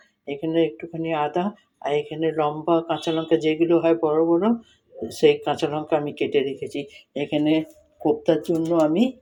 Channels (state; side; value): identical; both; correlation 1.00